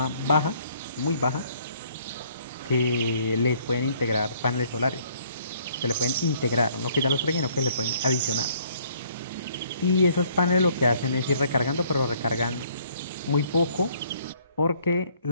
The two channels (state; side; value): inverted; both; correlation -0.62